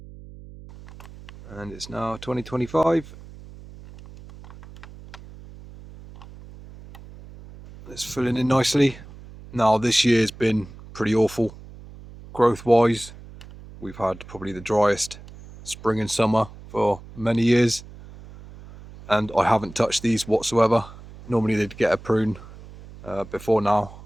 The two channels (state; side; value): noise; right; hum, 18 dB below the sound